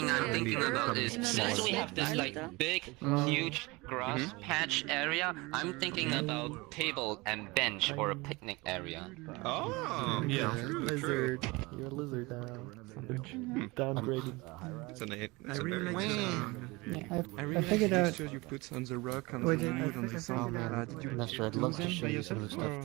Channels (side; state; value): left; quieter; 23.9 dB